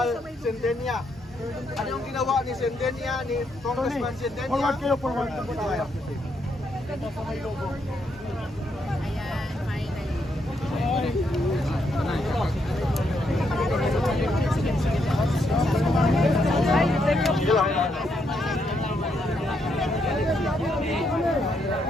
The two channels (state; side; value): normal; both; correlation 0.77